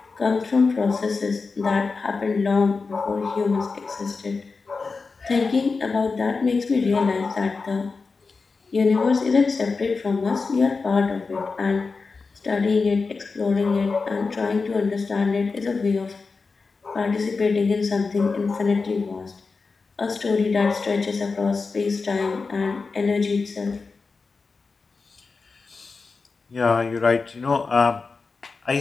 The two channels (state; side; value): quieter; right; 4.4 dB